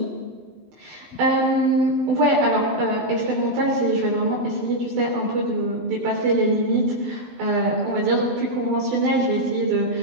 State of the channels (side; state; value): left; late; 12 ms